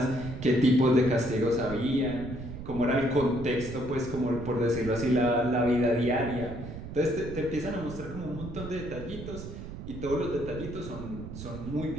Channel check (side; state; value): right; noise; rumble, 10 dB below the sound